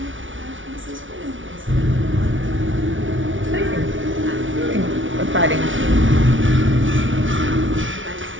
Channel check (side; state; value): left; late; 0.56 ms